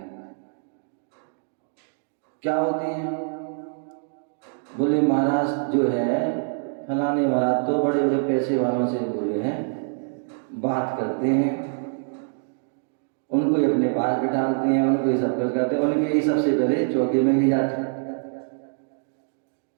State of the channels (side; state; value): left; silent; digital silence